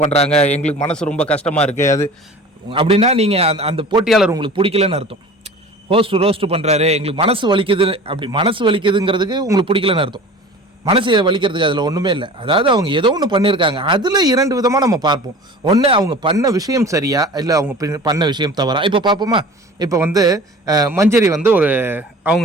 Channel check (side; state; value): both; normal; correlation 0.40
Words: பண்ணுறாங்க, எங்களுக்கு மனசு ரொம்ப கஷ்டமாக இருக்குது. அது அப்படின்னா நீங்கள் அந்த போட்டியாளர் உங்களுக்கு பிடிக்கலன்னு அர்த்தம். ஹோஸ்ட் ரோஸ்ட் பண்ணுறாரு, எங்களுக்கு மனசு வலிக்குது, அப்படி மனசு வலிக்குதுங்கிறதுக்கு உங்களுக்கு பிடிக்கலன்னு அர்த்தம். மனசை வலிக்கிறதுக்கு அதில் ஒன்றுமே இல்லை. அதாவது அவங்க ஏதோ ஒன்று பண்ணியிருக்காங்க. அதில் 2 விதமாக நம்ம பார்ப்போம். ஒன்று அவங்க பண்ண விஷயம் சரியா, இல்லை அவங்க பண்ண விஷயம் தவறா. இப்போ பார்ப்போமா? இப்போ வந்து மஞ்சரி வந்து